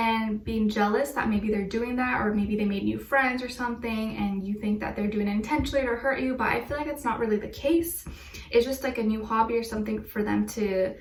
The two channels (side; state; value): both; identical; correlation 1.00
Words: being jealous that maybe they're doing that, or maybe they made new friends or something and you think that they're doing it intentionally to hurt you, but I feel like it's not really the case. It's just like a new hobby or something for them to,